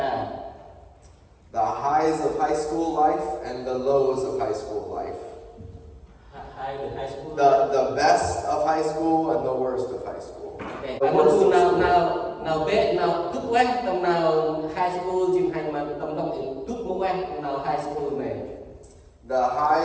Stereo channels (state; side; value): identical; both; correlation 1.00